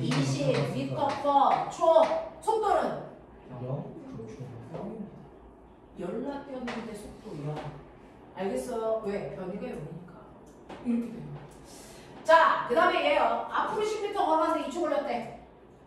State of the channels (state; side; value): identical; both; correlation 1.00